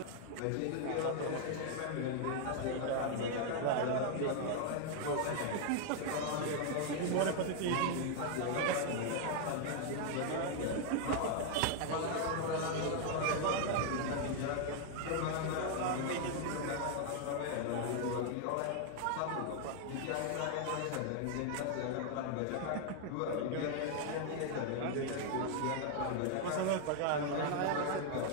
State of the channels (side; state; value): both; different; correlation 0.00